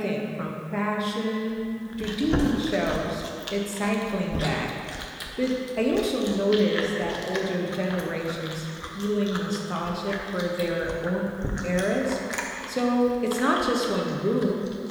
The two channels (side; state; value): both; identical; correlation 1.00